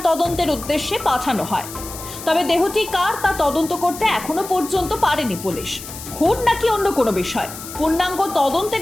তদন্তের উদ্দেশ্যে পাঠানো হয়। তবে দেহটি কার তা তদন্ত করতে এখনো পর্যন্ত পারেনি পুলিশ। খুন নাকি অন্য কোনো বিষয়, পূর্ণাঙ্গ তদন্তে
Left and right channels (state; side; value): noise; left; hiss, 12 dB below the sound